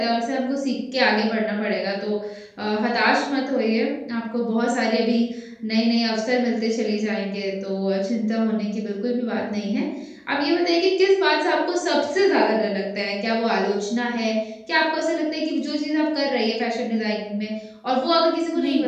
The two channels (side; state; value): both; identical; correlation 1.00